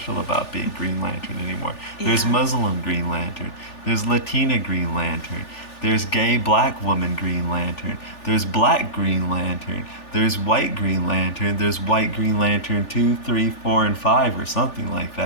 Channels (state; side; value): late; right; 3.4 ms